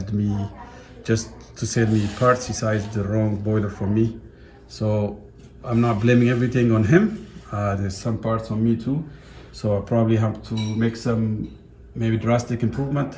me, just to save me parts, he sized the wrong boiler for me. So I'm not blaming everything on him. There's some parts on me too. So I probably have to make some maybe drastic improvement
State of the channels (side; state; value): both; identical; correlation 1.00